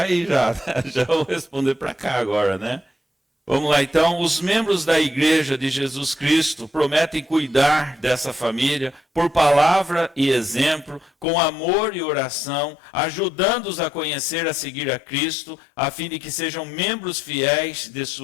vou responder para cá agora, né? Vamos lá, então, os membros da igreja de Jesus Cristo prometem cuidar dessa família por palavra e exemplo, com amor e oração, ajudando-os a conhecer, a seguir a Cristo, a fim de que sejam membros fiéis de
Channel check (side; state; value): right; drops out; at 11.2 s